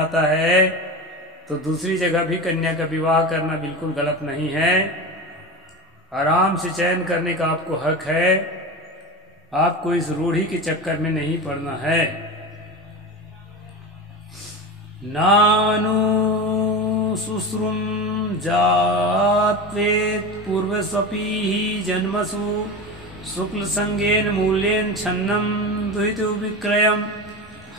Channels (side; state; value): both; normal; correlation 0.25